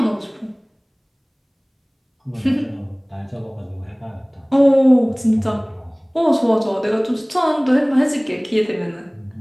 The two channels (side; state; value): both; identical; correlation 1.00